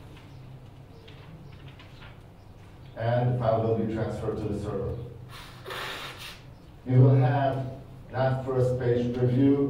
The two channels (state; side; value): identical; both; correlation 1.00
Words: And the file will be transferred to the server. You will have not first page